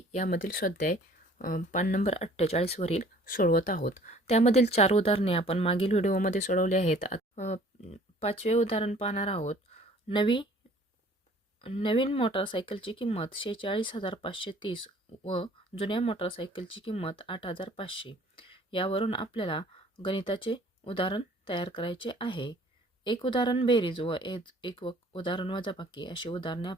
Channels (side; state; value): both; normal; correlation 0.54